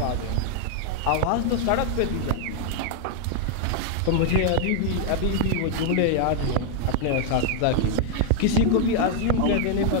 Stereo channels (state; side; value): different; both; correlation 0.00